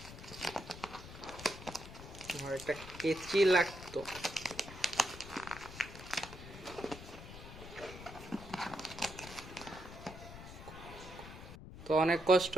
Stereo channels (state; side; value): noise; left; rumble, 13 dB below the sound